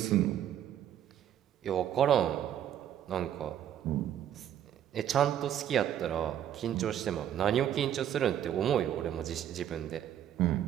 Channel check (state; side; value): quieter; left; 10.5 dB